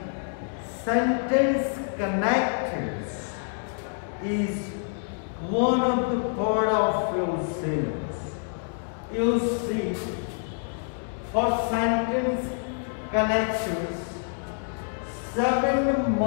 sentence connectors is one of the part of your syllabus. You see, for sentence connectors, 7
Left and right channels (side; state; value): right; silent; digital silence